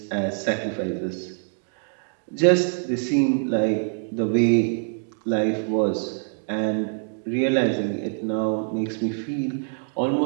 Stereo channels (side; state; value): left; silent; 62 dB below the other